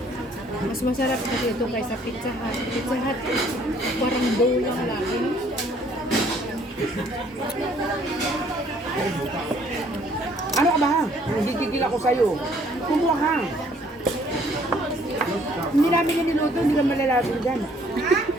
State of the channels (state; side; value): normal; both; correlation 0.61